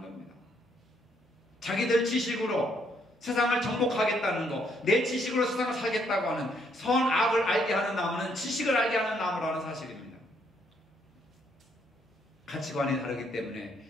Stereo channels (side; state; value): both; normal; correlation 0.71